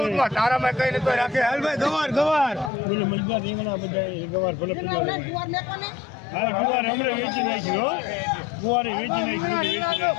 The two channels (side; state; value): right; drops out; at 2.7 s